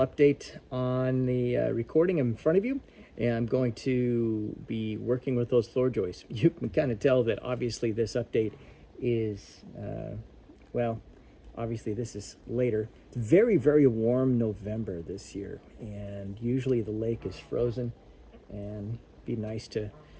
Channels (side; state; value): both; identical; correlation 1.00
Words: update on the recording in front of you, and I'm going to be working with those floor joists. You can kind of tell that obviously this update is, well, obviously this is later. It's very, very warm November this year, and usually the lake is frozen, and it'd be nice to,